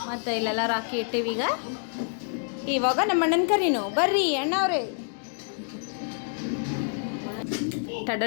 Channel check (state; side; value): silent; right; 59 dB below the other